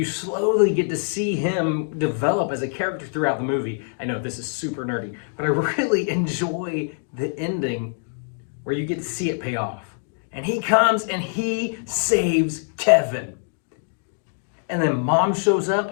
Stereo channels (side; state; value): right; silent; digital silence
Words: slowly get to see him develop as a character throughout the movie. I know this is super nerdy, but I really enjoy the ending where you get to see it pay off. And he comes and he saves Kevin. And then mom shows up